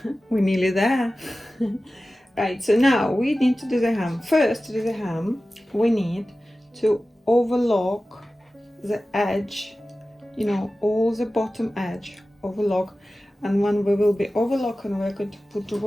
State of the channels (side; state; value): both; normal; correlation 0.95